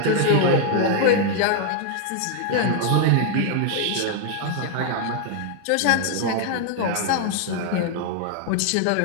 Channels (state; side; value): different; both; correlation 0.00